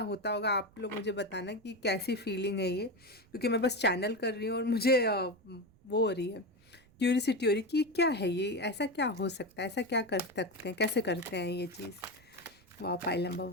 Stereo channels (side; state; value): right; noise; rumble, 29 dB below the sound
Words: होता होगा, आप लोग मुझे बताना कि कैसी फीलिंग है ये, क्योंकि मैं बस चैनल कर रही हूँ और मुझे वो हो रही है, क्यूरियोसिटी हो रही कि क्या है ये, ऐसा क्या हो सकता है, ऐसा क्या कर सकते हैं, कैसे करते हैं ये चीज़। वाह, पाइल